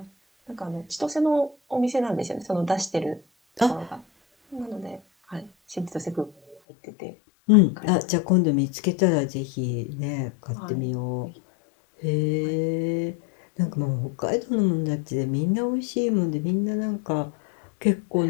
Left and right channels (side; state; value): right; drops out; at 6.6 s